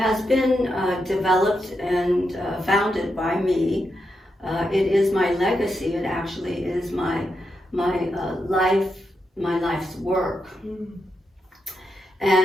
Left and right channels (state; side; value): normal; both; correlation 0.85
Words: been developed and founded by me. It is my legacy. It actually is my life's work.